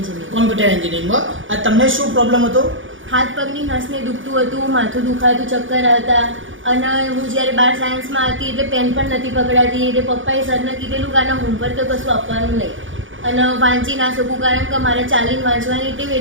કોમ્પ્યુટર એન્જિનિયરિંગમાં. તમને શું પ્રોબ્લેમ હતો? હાથ પગની નસને દુખતું હતું, માથું દુખાતું, ચક્કર આવતા. અને હું જ્યારે 12 સાયન્સમાં હતી એટલે પેન પણ નથી પકડાતી. એટલે પપ્પાએ સરને કીધેલું કે આના હોમવર્ક તો કશું આપવાનું નહીં. અને વાંચી ના શકું કારણ કે મારે ચાલીને વાંચવાની ટેવ,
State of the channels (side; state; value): left; late; 0.57 ms